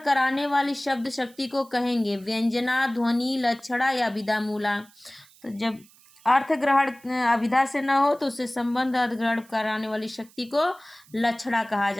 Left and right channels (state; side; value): noise; right; hiss, 27 dB below the sound